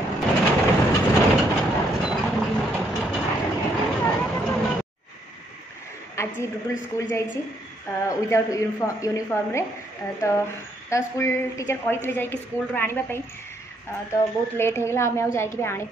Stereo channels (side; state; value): both; normal; correlation 0.72